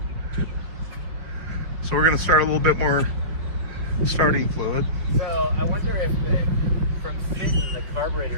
So we're gonna start a little bit more starting fluid. So I wonder if from sitting the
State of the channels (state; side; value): late; left; 5.3 ms